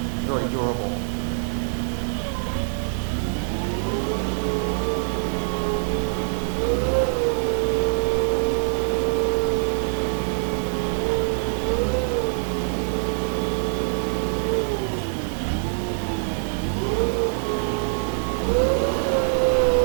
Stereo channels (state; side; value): silent; left; 63 dB below the other